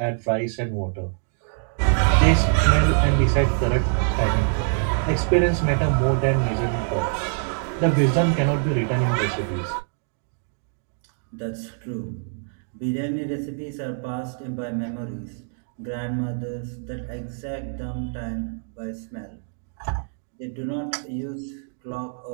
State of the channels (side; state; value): left; silent; 62 dB below the other